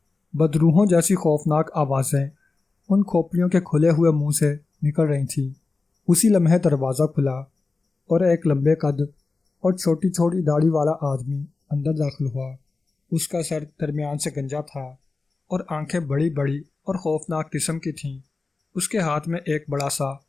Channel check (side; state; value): right; quieter; 3.8 dB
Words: بدروحوں جیسی خوفناک آوازیں ان کھوپڑیوں کے کھلے ہوئے منہ سے نکل رہی تھیں۔ اسی لمحے دروازہ کھلا اور ایک لمبے قد اور چھوٹی چھوٹی داڑھی والا آدمی اندر داخل ہوا۔ اس کا سر درمیان سے گنجا تھا اور آنکھیں بڑی بڑی اور خوفناک قسم کی تھیں۔ اس کے ہاتھ میں ایک بڑا سا